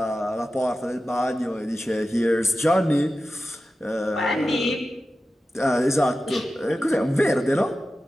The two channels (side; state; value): both; normal; correlation 0.93